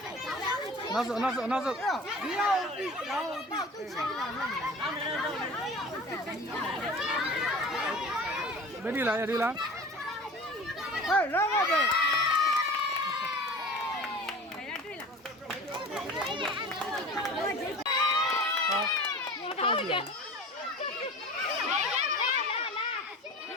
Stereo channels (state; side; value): normal; both; correlation 0.39